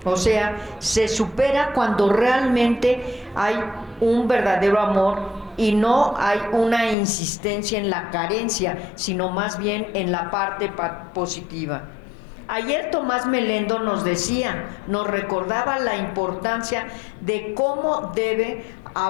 O sea, se supera cuando realmente hay un verdadero amor y no hay una insistencia en la carencia, sino más bien en la parte positiva. Ayer Tomás Melendo nos recordaba la importancia de cómo debe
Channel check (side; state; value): right; drops out; at 7.0 s